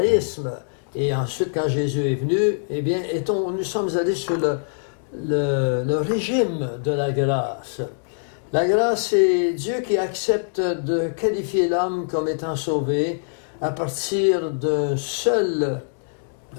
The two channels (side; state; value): right; silent; digital silence